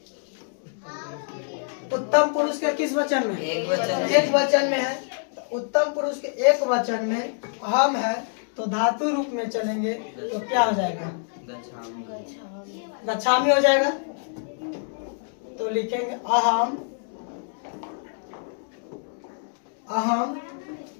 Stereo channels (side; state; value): right; silent; digital silence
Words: उत्तम पुरुष के किस वचन में? एक वचन। एक वचन में है। तो उत्तम पुरुष के एक वचन में अहम है, तो धातु रूप में चलेंगे तो क्या हो जाएगा? गच्छामी हो जाएगा। तो लिखेंगे अहम, अहम